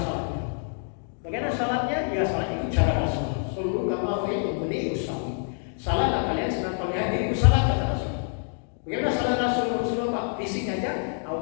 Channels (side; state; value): right; silent; 55 dB below the other